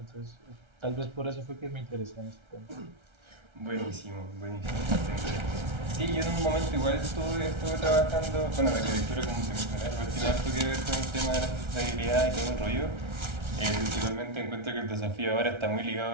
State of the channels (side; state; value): left; late; 1.3 ms